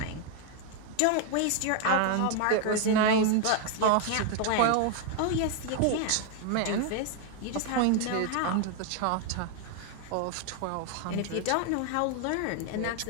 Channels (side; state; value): both; different; correlation 0.00